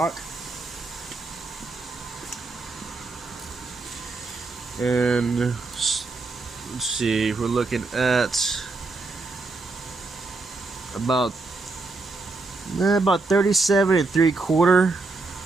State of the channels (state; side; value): quieter; left; 3.6 dB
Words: And let's see, we're looking at about 37 3/4.